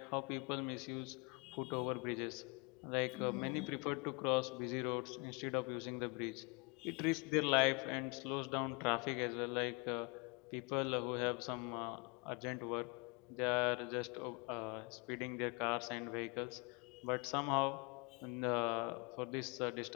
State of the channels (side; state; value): right; quieter; 31.4 dB